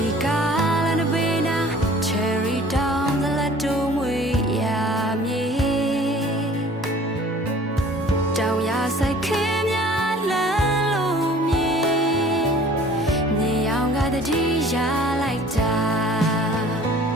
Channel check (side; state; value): both; normal; correlation 0.50